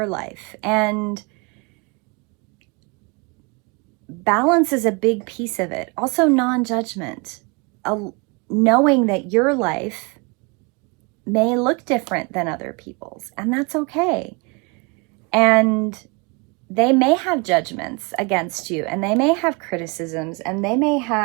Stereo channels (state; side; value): quieter; left; 29.4 dB